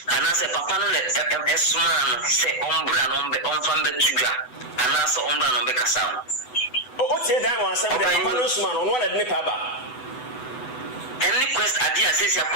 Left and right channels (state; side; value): late; right; 8.0 ms